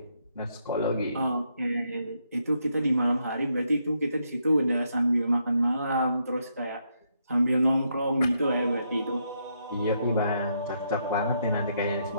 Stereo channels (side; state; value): both; inverted; correlation -0.77